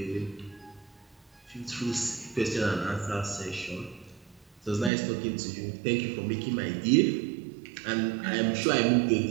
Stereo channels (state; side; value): drops out; left; at 4.9 s